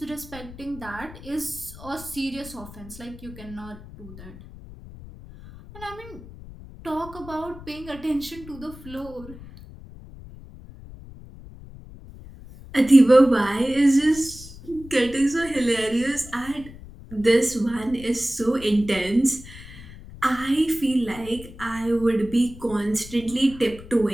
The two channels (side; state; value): left; noise; rumble, 16 dB below the sound